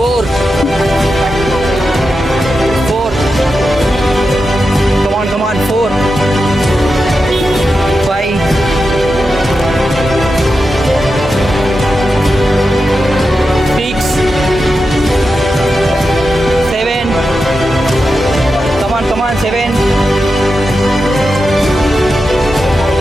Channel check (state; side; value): normal; both; correlation 0.89